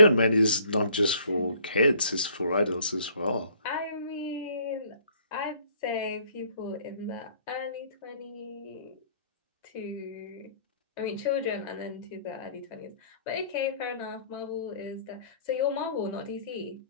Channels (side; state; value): both; inverted; correlation -0.58